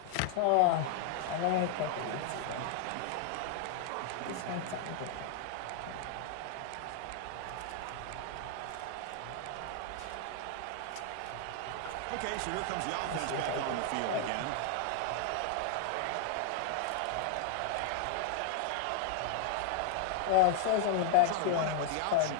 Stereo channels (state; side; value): different; both; correlation 0.00